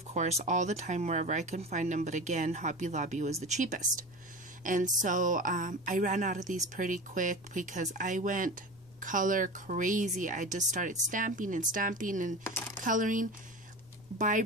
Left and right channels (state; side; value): noise; left; rumble, 27 dB below the sound